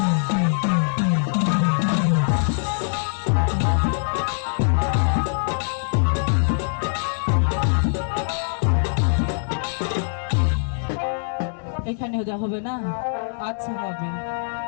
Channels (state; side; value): silent; right; 63 dB below the other